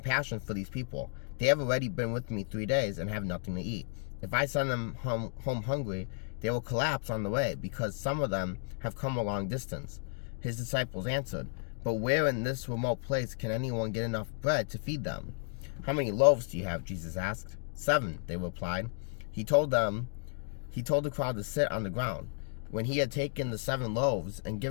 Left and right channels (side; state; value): right; silent; 56 dB below the other